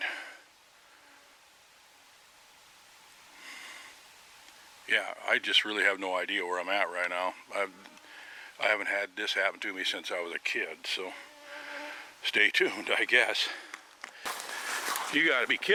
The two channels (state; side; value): identical; both; correlation 1.00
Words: Yeah, I just really have no idea where I'm at right now. I haven't had this happen to me since I was a kid, so stay tuned, I guess. You gotta be